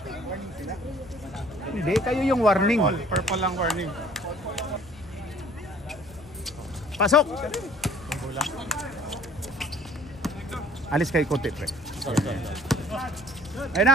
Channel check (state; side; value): noise; left; hum, 23 dB below the sound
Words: Hindi, kayo yung warning. Purple lang warning. Pasok! Alis kayo konti, pre. Ayun